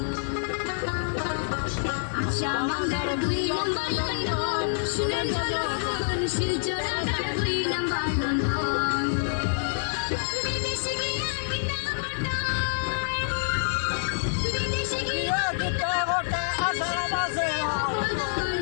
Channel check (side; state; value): right; silent; digital silence